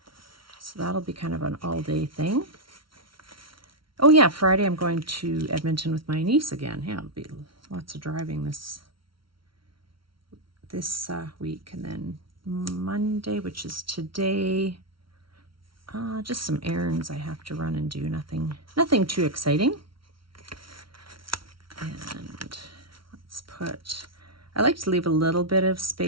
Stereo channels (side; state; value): left; late; 0.74 ms